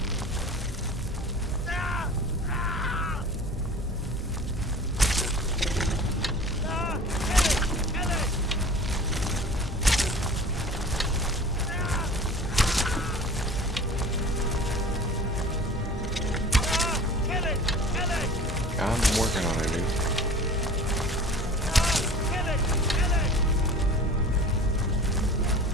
I'm working on it, dude.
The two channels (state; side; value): normal; both; correlation 0.41